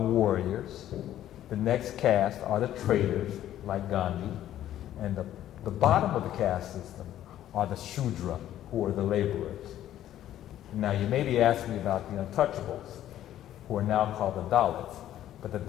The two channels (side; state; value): right; quieter; 12.2 dB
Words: The next caste are the traders, like Gandhi. And the bottom of the caste system are the Shudra, who are the laborers. Now, you may be asking me about the untouchables, who are now called the Dalits. But the